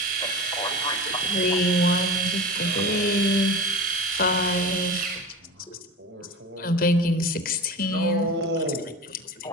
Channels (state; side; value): normal; both; correlation 0.30